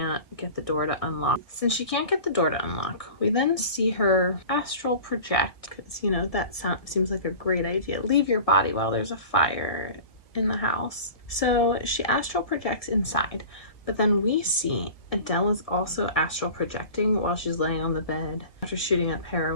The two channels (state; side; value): late; right; 1.6 ms